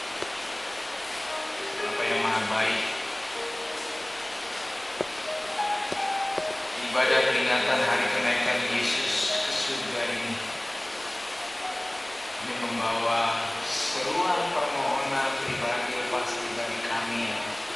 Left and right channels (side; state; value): left; noise; rumble, 29 dB below the sound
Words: Bapa yang maha baik, ibadah peringatan hari kenaikan Yesus ke surga ini membawa seruan permohonan pribadi pasti bagi kami